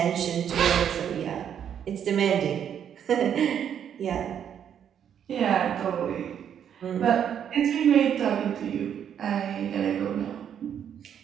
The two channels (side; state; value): left; quieter; 8.8 dB